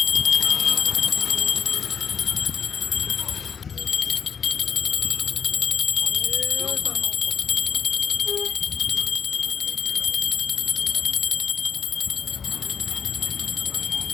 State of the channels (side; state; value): right; quieter; 6.8 dB